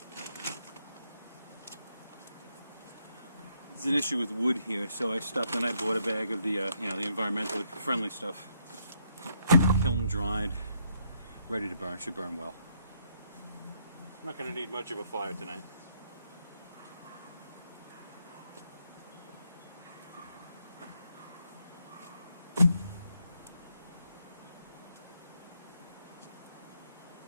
There's an issue with wood here, so I stopped and I bought a bag of the the environmentally friendly stuff. Kiln dried, ready to burn. Should burn well. I'm not going to need much of a fire tonight.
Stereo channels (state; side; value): inverted; both; correlation -0.74